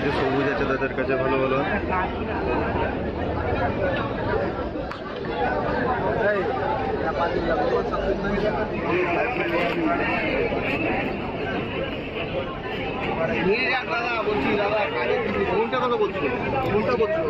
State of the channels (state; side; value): identical; both; correlation 1.00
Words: সবুজ আছে তাদের কাছে ভালো ভালো।